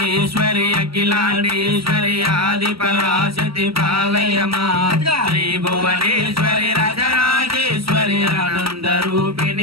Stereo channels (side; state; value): left; late; 0.75 ms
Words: అఖిలాండేశ్వరి ఆది పరాశక్తి పాలయమా శ్రీ భువనేశ్వరి రాజరాజేశ్వరి ఆనంద